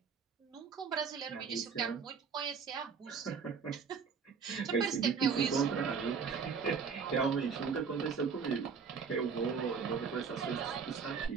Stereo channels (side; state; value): left; quieter; 5.9 dB